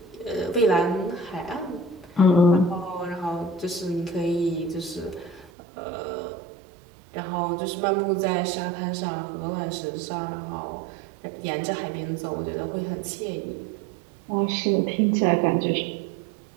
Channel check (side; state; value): left; drops out; at 5.5 s